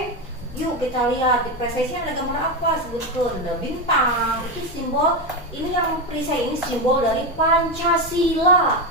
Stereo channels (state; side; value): normal; both; correlation 0.12